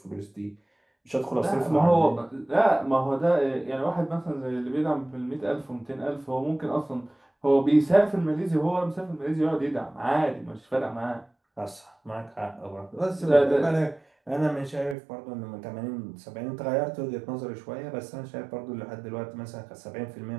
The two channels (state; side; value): drops out; left; at 15.0 s